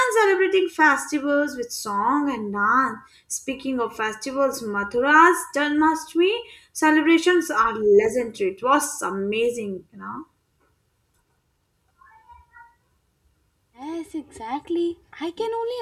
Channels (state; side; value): identical; both; correlation 1.00